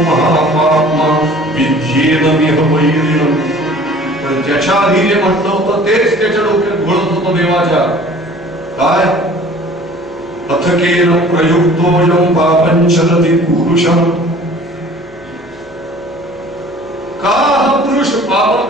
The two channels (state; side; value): noise; left; hum, 27 dB below the sound